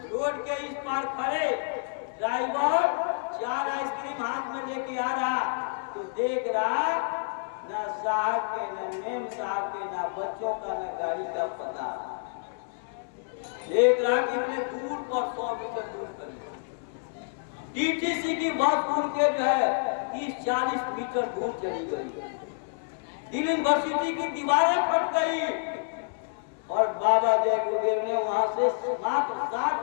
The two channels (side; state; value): right; silent; 59 dB below the other